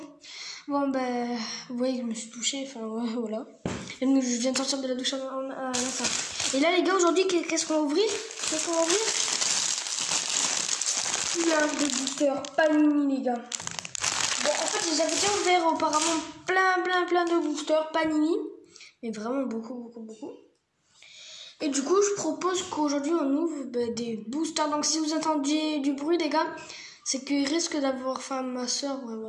Bon ben, vous voyez que je me suis touchée, enfin ouais, voilà. Et donc, je viens de sortir de la douche à l'instant. Et là les gars, aujourd'hui qu'est-ce qu'on va ouvrir? Plein de boosters Panini les gars. Bon en fait j'avais déjà ouvert auparavant plein de boosters Panini. Mais vraiment beaucoup. Et du coup, je propose qu'aujourd'hui, on ouvre des boosters. Donc, si vous entendiez du bruit, les gars, c'est qu'il risque d'avoir faim ma soeur. Ouais,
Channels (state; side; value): identical; both; correlation 1.00